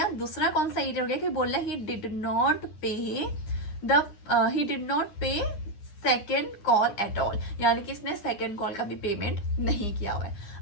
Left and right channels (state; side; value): late; right; 10 ms